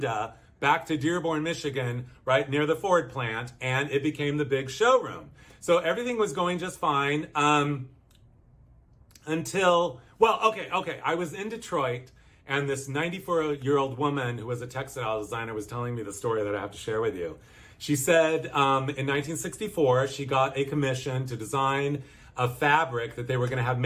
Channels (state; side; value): identical; both; correlation 1.00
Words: back to Dearborn, Michigan, right near the Ford plant, and it became the big showroom. So everything was going just fine until, well, okay. I was in Detroit, and this 94-year-old woman who was a textile designer was telling me the story that I have to share with you. She said in 1964, she got a commission to design a fabric that they were going to have